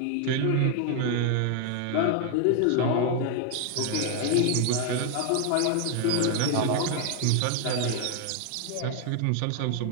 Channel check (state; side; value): different; both; correlation 0.00